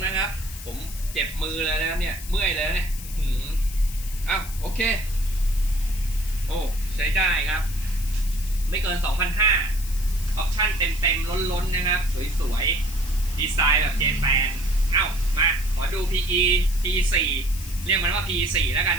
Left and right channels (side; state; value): left; noise; hiss, 14 dB below the sound